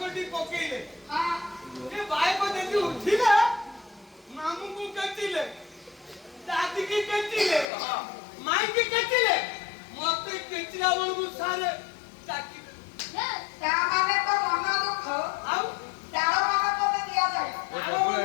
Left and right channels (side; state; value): right; drops out; at 7.7 s